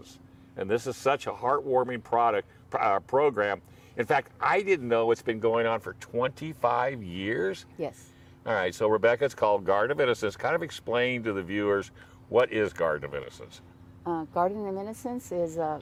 and this is such a heartwarming program. In fact, I didn't know it's been going on for 25 years. Yes. All right, so Rebecca, it's called Garden of Innocence. Kind of explain to the viewers, what is Garden of Innocence? Garden of Innocence is an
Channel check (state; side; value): identical; both; correlation 1.00